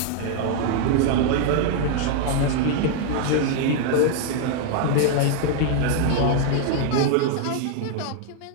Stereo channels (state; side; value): different; both; correlation 0.00